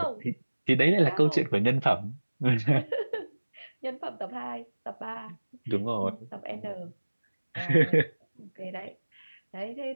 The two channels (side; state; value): both; inverted; correlation -1.00